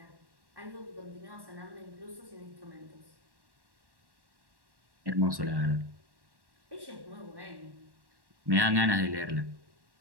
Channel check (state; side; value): late; left; 1.1 ms